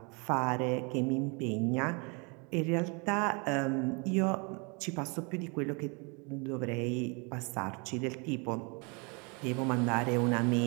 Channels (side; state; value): left; quieter; 32.0 dB